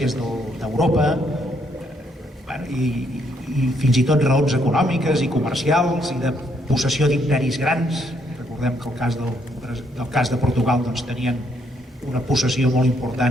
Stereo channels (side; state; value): both; normal; correlation 0.72